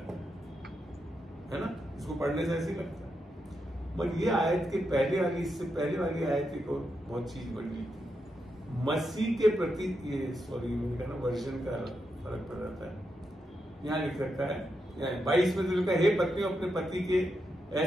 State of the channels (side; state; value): both; normal; correlation 0.84